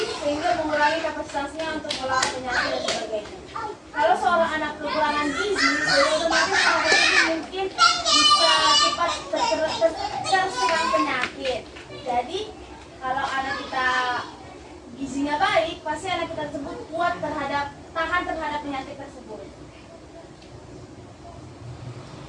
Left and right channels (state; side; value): identical; both; correlation 1.00